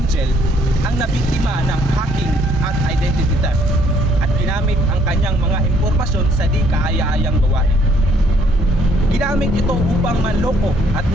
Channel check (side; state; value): both; normal; correlation 0.65